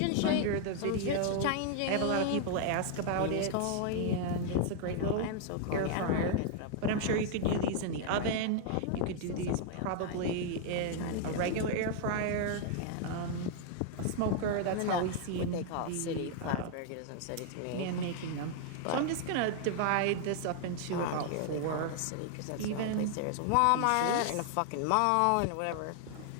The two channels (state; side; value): different; both; correlation 0.00